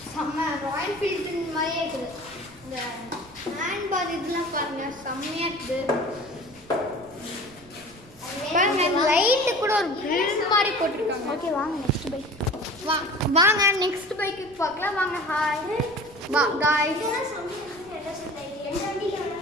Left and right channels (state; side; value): noise; right; rumble, 24 dB below the sound